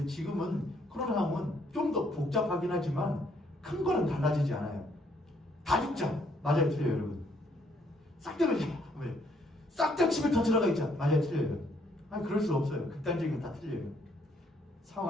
지금은 코로나 상황은 좀 더 복잡하긴 하지만 큰 거는 달라지지 않아요. 다 죽자. 맞아요, 틀려요, 여러분. 싹 다 그러자. 왜? 싹 다 집에 더 들어가 있자. 맞아요, 틀려요. 아니, 그럴 수 없어요. 극단적인 건 다 틀려요.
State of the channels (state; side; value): normal; both; correlation 0.68